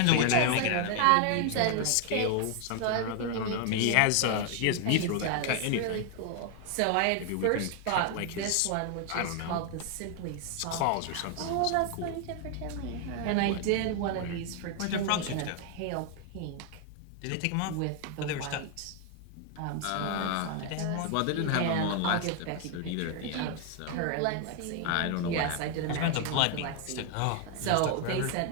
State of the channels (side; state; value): both; different; correlation 0.00